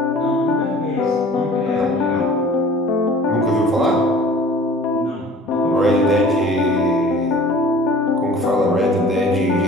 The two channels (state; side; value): normal; both; correlation 0.47